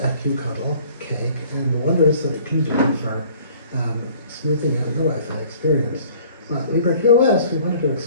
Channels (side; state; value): both; inverted; correlation -0.54